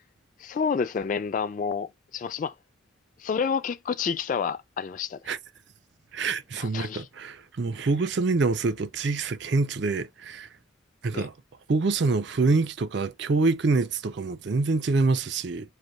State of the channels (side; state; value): both; normal; correlation 0.49